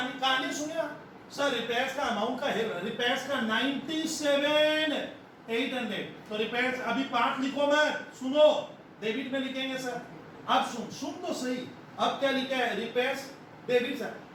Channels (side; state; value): both; identical; correlation 1.00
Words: कहानी सुनिए सर, रिपेयर्स का अमाउंट का है, रिपेयर्स का 97,800, तो रिपेयर्स अभी पार्ट लिखो मत, सुनो डेबिट में लिखेंगे सर। अब सुन तो सही, अब क्या लिखा है? रिपेयर्स डेबिट सर,